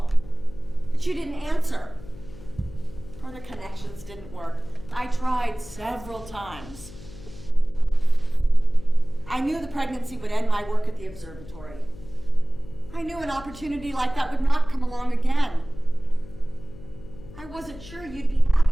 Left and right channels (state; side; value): noise; left; hum, 17 dB below the sound